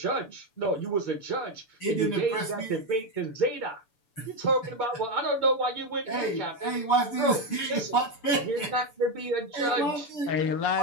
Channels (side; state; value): right; late; 6.9 ms